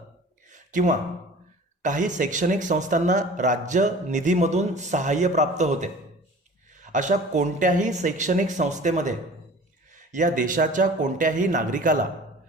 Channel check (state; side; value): normal; both; correlation 0.43